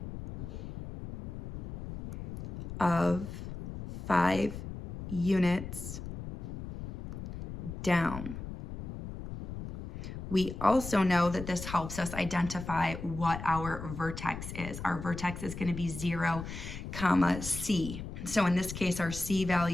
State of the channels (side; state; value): left; noise; rumble, 9 dB below the sound